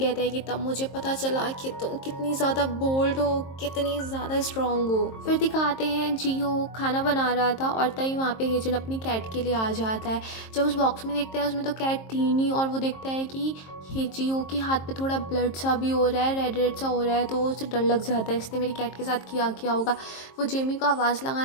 है कि तब मुझे पता चला कि तुम कितनी ज़्यादा बोल्ड हो, कितनी ज़्यादा स्ट्रॉन्ग हो। फिर दिखाते हैं जीहो खाना बना रहा था और तभी वहाँ पे हेजिन अपनी कैट के लिए आ जाता है। जब उस बॉक्स में देखता है उसमें तो कैट थी नहीं, और वो देखता है कि जीहो के हाथ पे थोड़ा ब्लड सा भी हो रहा है, रेड रेड सा हो रहा है, तो उसे डर लग जाता है इसने मेरी कैट के साथ किया होगा। वो जेमी को आवाज़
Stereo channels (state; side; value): late; right; 23 ms